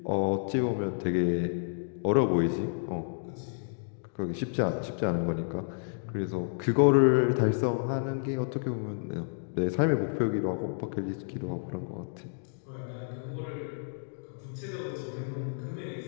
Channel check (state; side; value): silent; right; digital silence